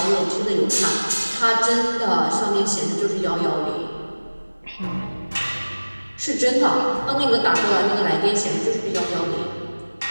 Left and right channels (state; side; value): inverted; both; correlation -1.00